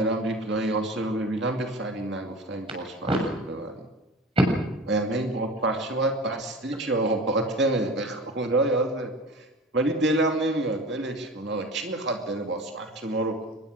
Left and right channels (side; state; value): both; normal; correlation 0.36